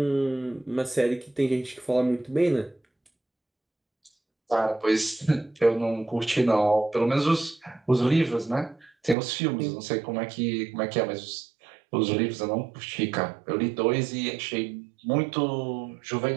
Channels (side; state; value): left; drops out; at 9.2 s